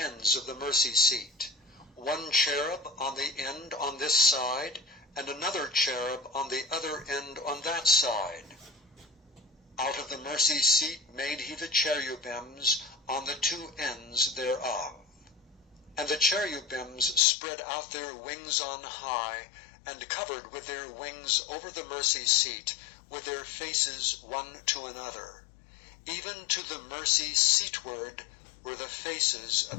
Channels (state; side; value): drops out; right; at 17.2 s